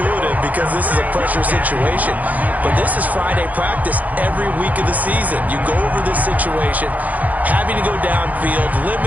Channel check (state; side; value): late; left; 0.078 ms